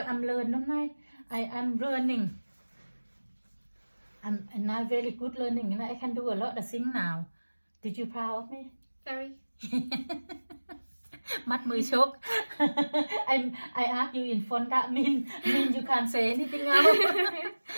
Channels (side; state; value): both; inverted; correlation -1.00